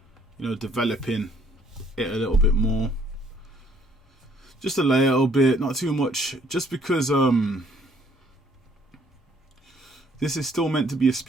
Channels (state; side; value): normal; both; correlation 0.63